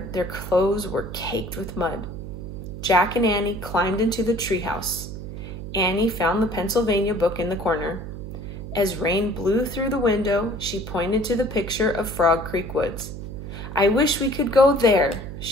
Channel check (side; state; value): right; noise; hum, 9 dB below the sound